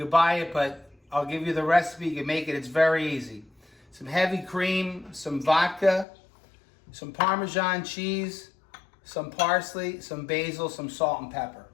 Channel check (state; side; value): drops out; right; at 6.1 s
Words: buy it, but I'll give you the recipe, you can make it, it's very easy. Some heavy cream, some vodka, some Parmesan cheese, some parsley, some basil, some salt and pepper.